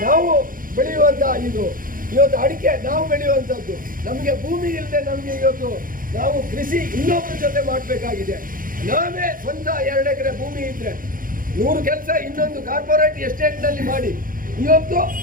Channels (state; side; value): late; left; 0.40 ms